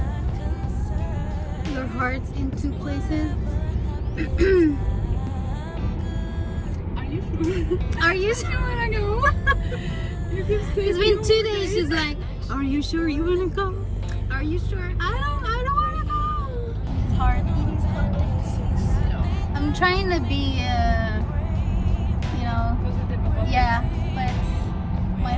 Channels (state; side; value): identical; both; correlation 1.00